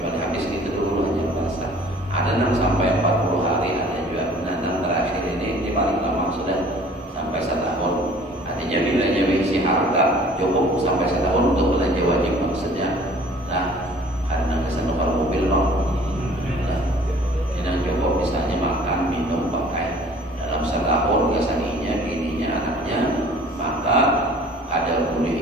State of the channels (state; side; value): normal; both; correlation 0.51